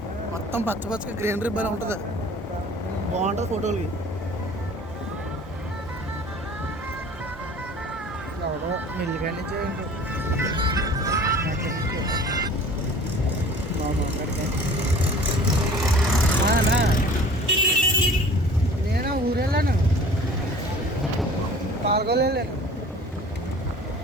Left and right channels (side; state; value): both; normal; correlation 0.46